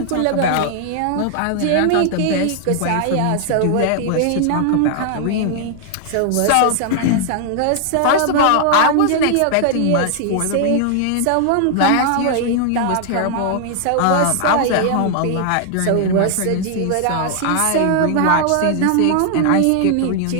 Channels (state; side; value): different; both; correlation 0.00